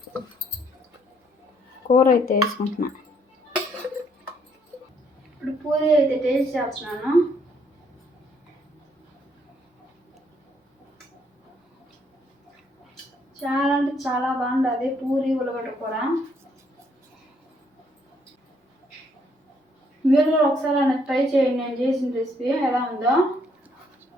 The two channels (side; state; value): both; normal; correlation 0.69